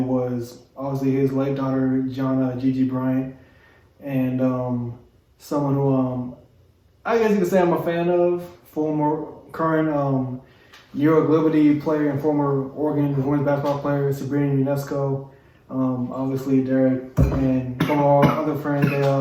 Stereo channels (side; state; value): both; identical; correlation 1.00